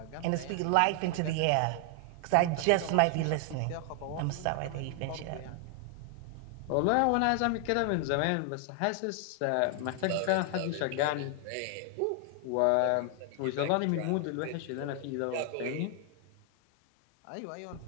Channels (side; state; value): both; different; correlation 0.00